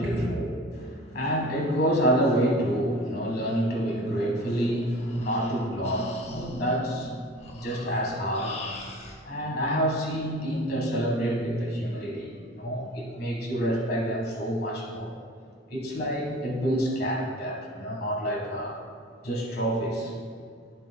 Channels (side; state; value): both; normal; correlation 0.39